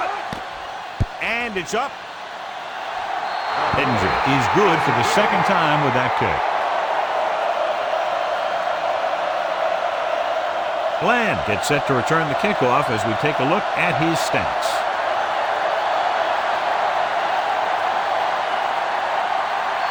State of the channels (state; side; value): identical; both; correlation 1.00